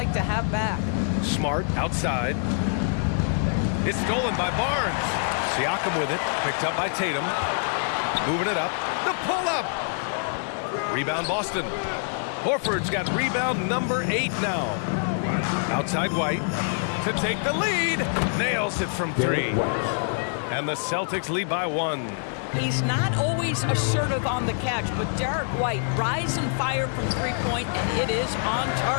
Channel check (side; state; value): right; silent; digital silence